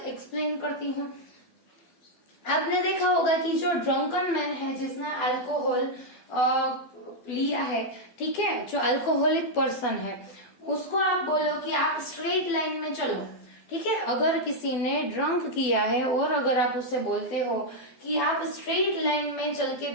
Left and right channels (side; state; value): right; late; 12 ms